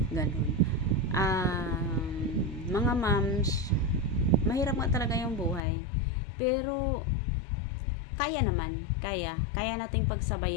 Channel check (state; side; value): drops out; right; at 5.6 s